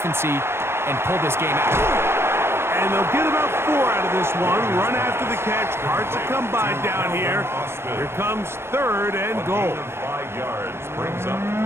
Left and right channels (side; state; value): left; late; 0.12 ms